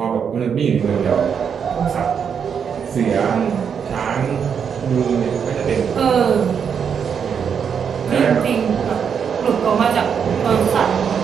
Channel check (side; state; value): left; quieter; 7.2 dB